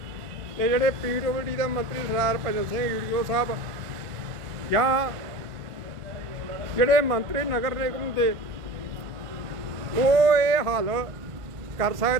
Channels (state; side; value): late; left; 1.5 ms